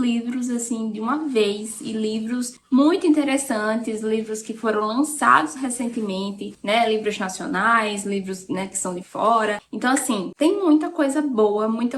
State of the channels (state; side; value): identical; both; correlation 1.00